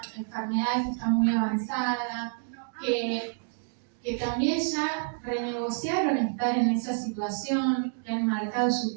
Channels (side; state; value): left; silent; 59 dB below the other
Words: enfermedad que está muy avanzada, que también ya renegociaron estar en esa situación, que han marcado su